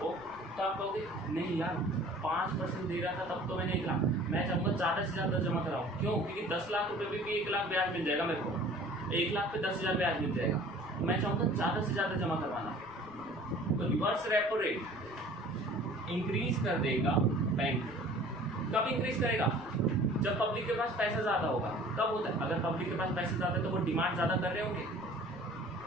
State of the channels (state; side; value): noise; left; rumble, 24 dB below the sound